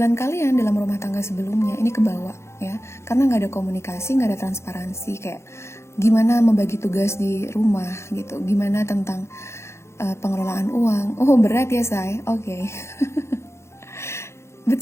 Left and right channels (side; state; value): right; late; 0.13 ms